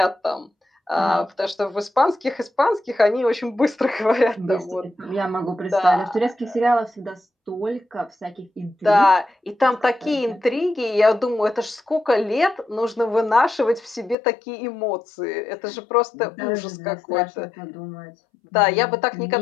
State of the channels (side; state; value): right; drops out; at 14.2 s